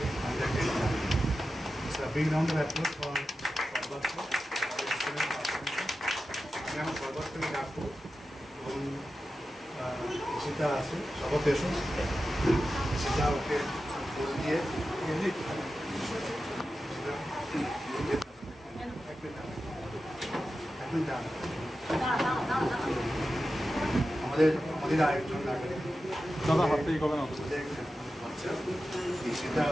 Under-10 Champion. So a big round of applause for Sarbatko. আমি আমার সর্বত্রকে ডাকবো এবং সেটা আছে সবার দেশও সেটা ওকে বল দিয়ে আমাদের আরেকজন দাদা হাত থেকে কবে না সেটা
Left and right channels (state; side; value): normal; both; correlation 0.92